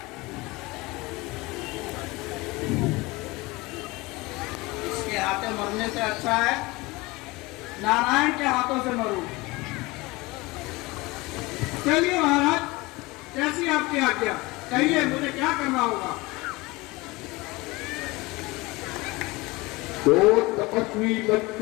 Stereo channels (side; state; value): right; quieter; 22.6 dB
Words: इसके हाथों मरने से अच्छा है नारायण के हाथों से मरूं। चलिए महाराज, कैसी आपकी आज्ञा, कहिए मुझे क्या करना होगा। दो तपस्वी